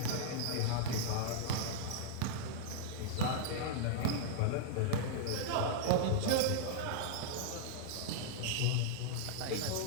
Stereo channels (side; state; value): both; different; correlation -0.01